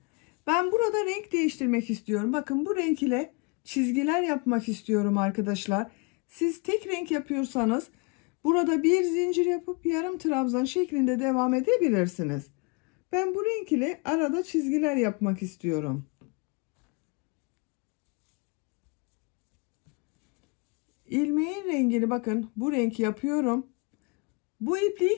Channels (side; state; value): right; quieter; 30.8 dB